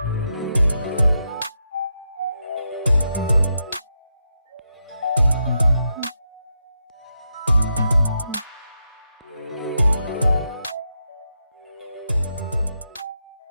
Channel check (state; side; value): inverted; both; correlation -0.84